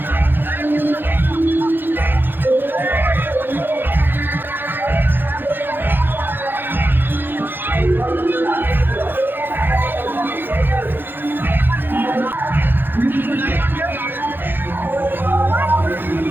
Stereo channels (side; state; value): left; late; 0.098 ms